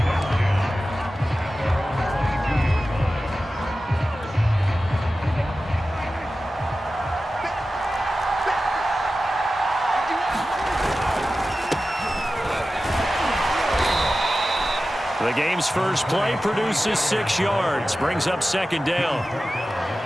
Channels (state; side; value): normal; both; correlation 0.94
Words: The game's first play produces 6 yards, brings up second down.